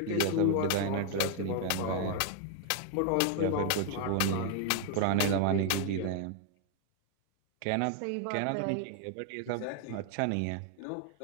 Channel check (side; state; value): both; different; correlation 0.00